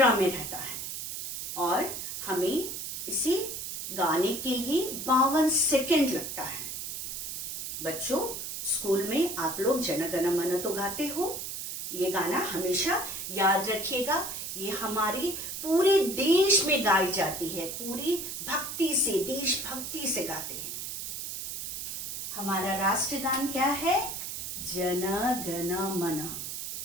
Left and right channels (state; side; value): noise; right; hiss, 6 dB below the sound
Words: में रहता है और हमें इसे गाने के लिए 52 सेकंड लगता है। बच्चों, स्कूल में आप लोग जन गण मन तो गाते हो। ये गाना हमेशा याद रखिएगा। ये हमारे पूरे देश में गाई जाती है, पूरी भक्ति से, देशभक्ति से गाते हैं। हमारा राष्ट्रगान क्या है? जन गण मन।